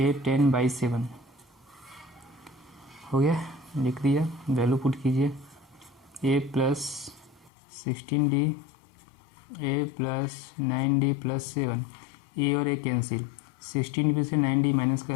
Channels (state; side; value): drops out; right; at 7.5 s